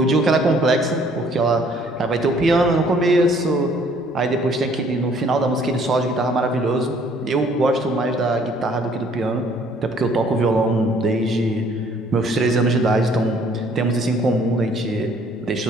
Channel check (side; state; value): both; normal; correlation 0.60